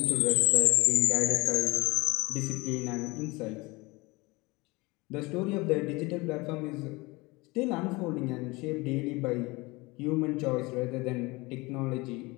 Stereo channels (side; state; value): right; quieter; 23.9 dB